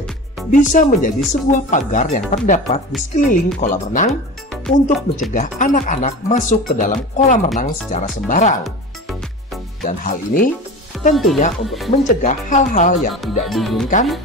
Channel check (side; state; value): both; normal; correlation 0.32